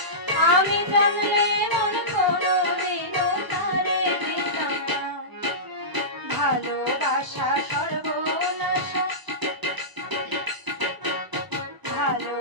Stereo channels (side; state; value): left; late; 1.0 ms